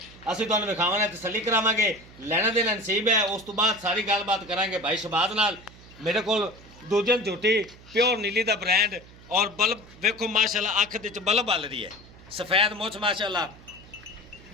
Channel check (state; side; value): noise; right; hum, 21 dB below the sound